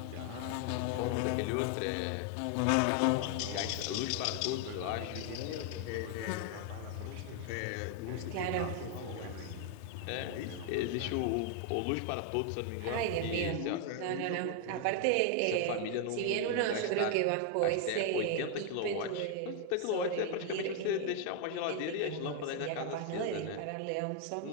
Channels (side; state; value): both; different; correlation 0.00